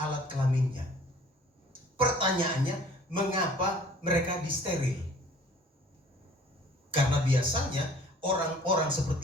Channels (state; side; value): normal; both; correlation 0.52